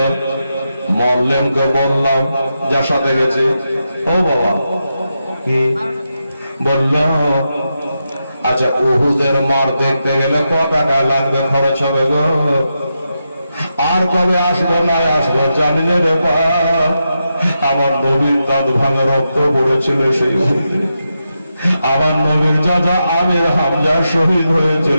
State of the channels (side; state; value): both; inverted; correlation -0.87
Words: মরলেনকে বললাম যার সাথে গেছে, ও বাবা কি বলল, আচ্ছা উহুদের মার দেখতে গেলে কত টাকা লাগবে, খরচ হবে গো, আর কবে আসবে না আসবে জানি না রে বাপ, আমার নবীর দাঁত ভাঙা রক্ত পড়েছিল সেই আমার নবীর চাচা আমির হামজা শহীদ